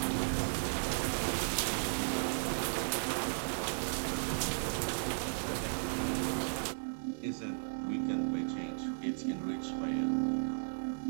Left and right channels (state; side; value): silent; left; 54 dB below the other